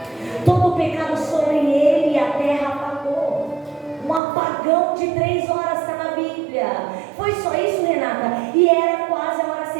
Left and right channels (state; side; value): drops out; left; at 4.2 s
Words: Todo o pecado sobre ele e a terra apagou. Um apagão de 3 horas está na Bíblia. Foi só isso, Renata? E era quase a hora